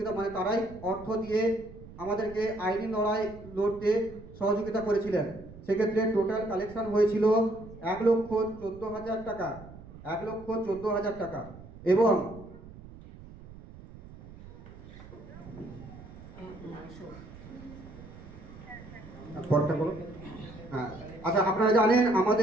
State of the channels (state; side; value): noise; right; rumble, 17 dB below the sound